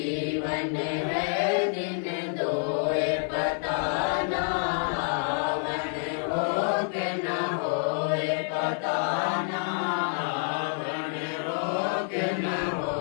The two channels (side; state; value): right; silent; 56 dB below the other